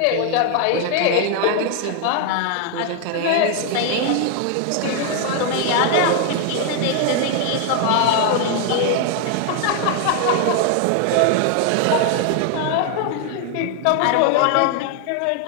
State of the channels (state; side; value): different; both; correlation 0.00